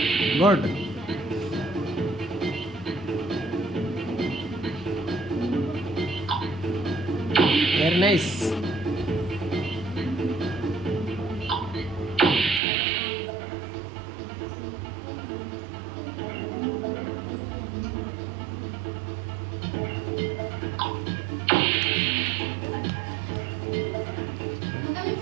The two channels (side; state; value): left; drops out; at 12.6 s